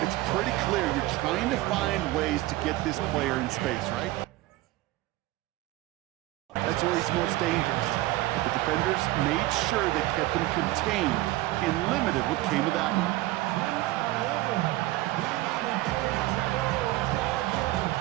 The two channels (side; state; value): left; quieter; 17.9 dB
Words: pretty clear you're trying to find ways to get this player in space, right? That's where he's most dangerous. But the defenders made sure they kept him contained and limited what came of that one.